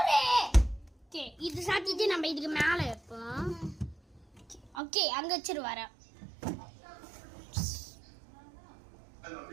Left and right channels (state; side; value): drops out; left; at 4.7 s